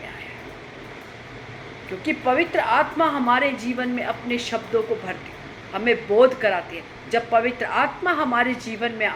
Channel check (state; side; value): identical; both; correlation 1.00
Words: आया है। क्योंकि पवित्र आत्मा हमारे जीवन में अपने शब्दों को भरती है, हमें बोध कराती है। जब पवित्र आत्मा हमारे जीवन में